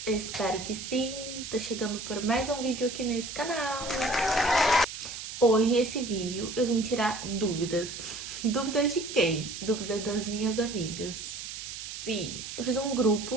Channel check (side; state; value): right; noise; hiss, 9 dB below the sound